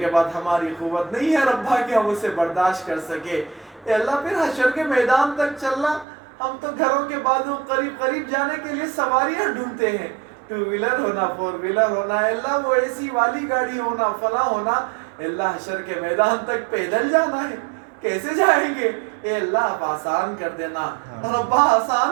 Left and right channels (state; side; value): drops out; left; at 6.1 s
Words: بعد ہماری قوت نہیں ہے ربا کہ ہم اسے برداشت کر سکے۔ اے اللہ پھر حشر کے میدان تک چلنا، ہم تو گھروں کے بازو قریب قریب جانے کے لیے سواریاں ڈھونڈتے ہیں، 2 ویلر ہونا، 4 ویلر ہونا، اے اللہ وہ اے سی والی گاڑی ہونا، فلاں ہونا۔ اے اللہ حشر کے میدان تک پیدل جانا ہے، کیسے جائیں گے؟ اے اللہ آپ آسان کر دینا ربا،